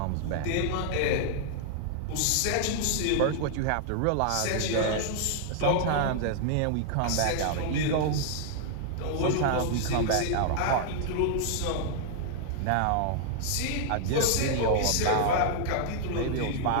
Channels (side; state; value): both; different; correlation 0.00